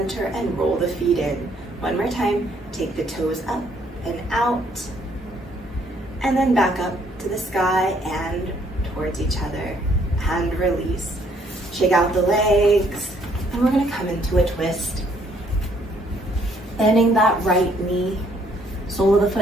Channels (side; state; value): both; normal; correlation 0.66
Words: and roll the feet in. One more time, take the toes up and out, and then back up to the sky and towards each other, and release. Shake out the legs, and we're gonna come into a twist. Bending that right knee, sole of the